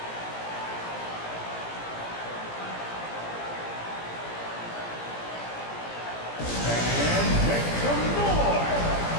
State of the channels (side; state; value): right; late; 17 ms